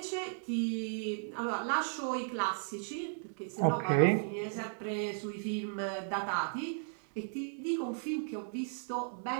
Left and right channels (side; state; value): left; silent; digital silence